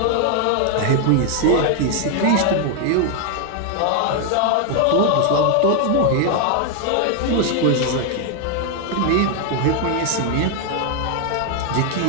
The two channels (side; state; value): both; different; correlation 0.00